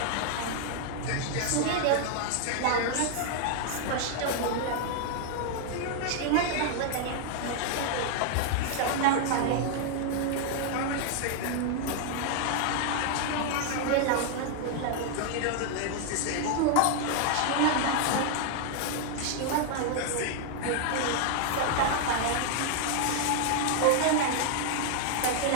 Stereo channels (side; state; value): both; different; correlation 0.00